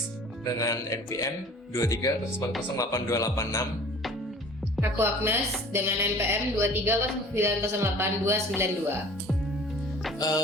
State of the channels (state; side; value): normal; both; correlation 0.46